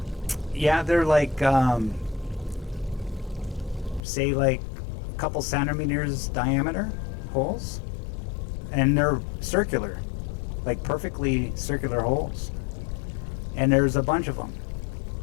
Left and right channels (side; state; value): right; drops out; at 4.0 s